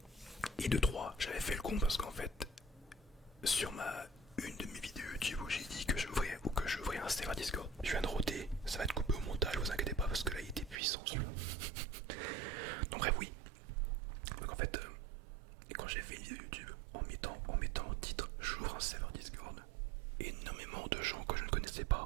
Et de 3, j'avais fait le con parce qu'en fait, sur une de mes vidéos YouTube où j'ai dit que j'ouvrais un serveur Discord, je viens de roter, ça va être coupé au montage, vous inquiétez pas parce que là il était puissant celui-là. Donc bref, oui. Donc en fait, quand j'ai fait une vidéo YouTube en mettant en titre j'ouvre un serveur Discord, énormément de gens que je ne connaissais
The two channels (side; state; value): left; drops out; at 10.8 s